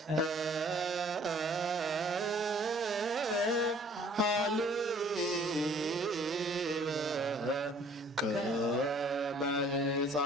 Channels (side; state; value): both; normal; correlation 0.55